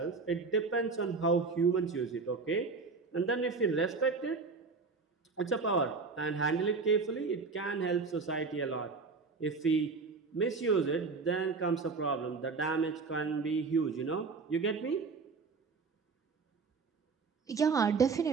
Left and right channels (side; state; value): left; quieter; 4.5 dB